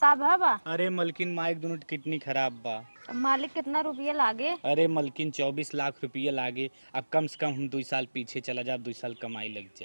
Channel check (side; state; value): both; inverted; correlation -1.00